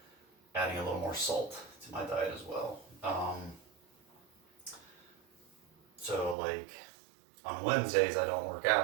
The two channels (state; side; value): drops out; left; at 6.4 s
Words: adding a little more salt to my diet as well. So like on Wednesdays I don't work